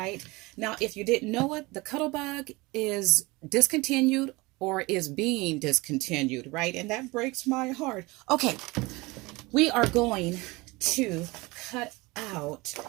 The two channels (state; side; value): quieter; left; 23.2 dB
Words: Now, if you didn't know it, the Cuddle Bug is discontinued or is being discontinued, right? And that breaks my heart. Okay, we are going to cut out